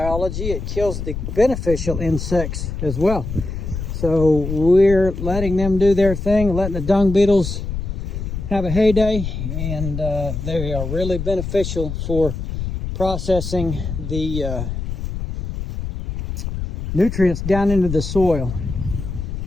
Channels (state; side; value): noise; left; rumble, 5 dB below the sound